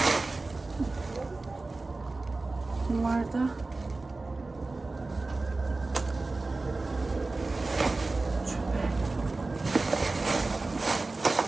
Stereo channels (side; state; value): left; quieter; 3.4 dB